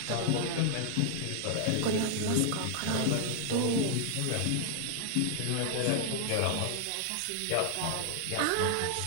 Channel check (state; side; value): different; both; correlation 0.00